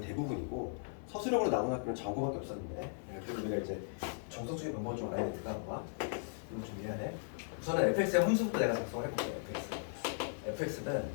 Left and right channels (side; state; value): right; silent; 53 dB below the other